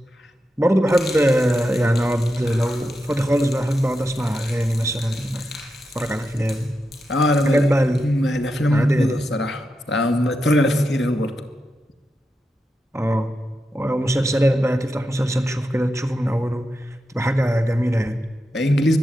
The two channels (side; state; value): both; normal; correlation 0.88